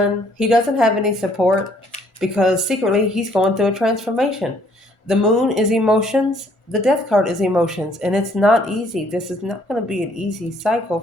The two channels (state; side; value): late; right; 1.4 ms